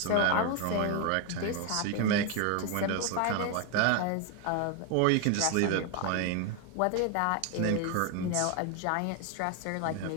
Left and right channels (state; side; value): different; both; correlation 0.01